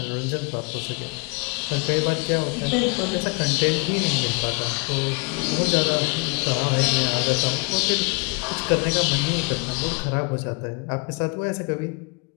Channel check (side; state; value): right; quieter; 32.1 dB